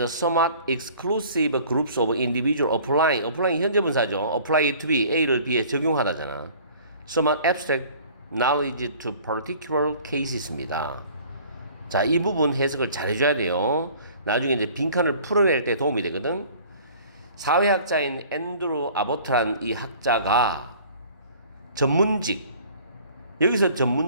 somewhat exclusive groups of individual applying 현재 분사죠. apply to B, A를 B에 적용하다잖아. somewhat abstract knowledge to particular cases입니다. 자, 이 부분 해석을 잘 해줘야 돼요. 나중에 이제 빈칸을 풀어낼 때 도움이 되거든. 사회학자인 앤드루 아보트란 이 학자가 전문직, 여기서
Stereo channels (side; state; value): both; inverted; correlation -0.50